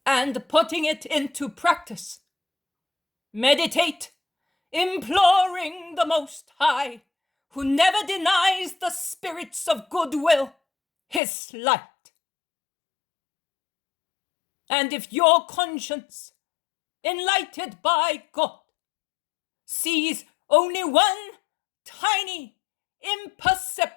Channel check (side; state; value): right; drops out; at 11.2 s